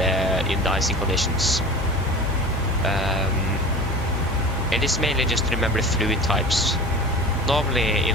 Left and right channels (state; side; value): normal; both; correlation 0.36